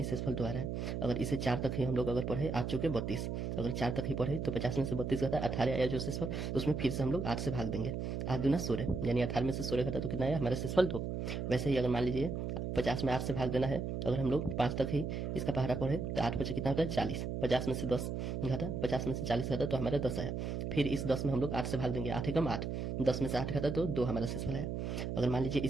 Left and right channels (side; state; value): right; noise; hum, 3 dB below the sound